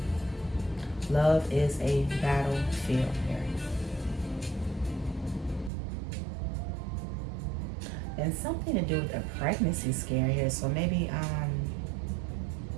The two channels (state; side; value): drops out; left; at 5.7 s